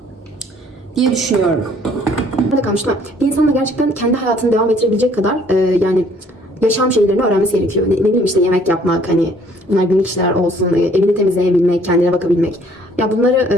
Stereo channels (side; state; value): both; normal; correlation 0.60